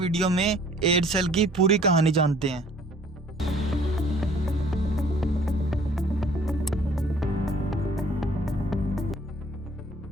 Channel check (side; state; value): both; normal; correlation 0.55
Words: में एयरसेल की पूरी कहानी जानते हैं।